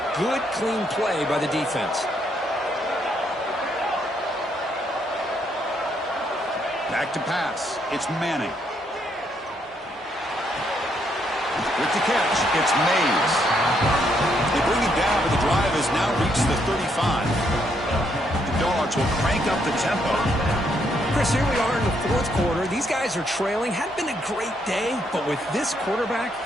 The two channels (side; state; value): both; normal; correlation 0.74